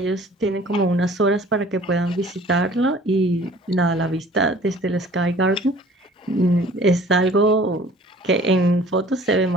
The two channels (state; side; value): normal; both; correlation 0.50